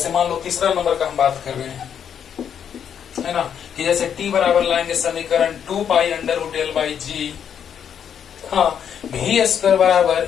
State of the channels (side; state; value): right; quieter; 8.3 dB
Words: मान लो तीसरा नंबर का हम बात कर रहे हैं, है ना, कि जैसे टी बराबर लाएंगे समीकरण 2 pi under root l by g, हाँ भी स्क्वायर बराबर